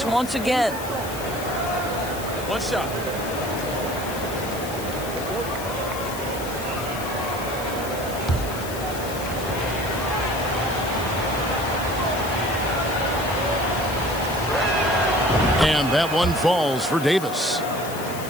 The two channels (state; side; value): noise; left; hiss, 12 dB below the sound